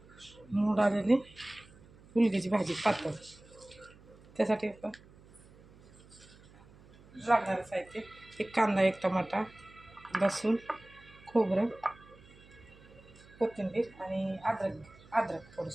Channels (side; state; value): right; noise; hum, 24 dB below the sound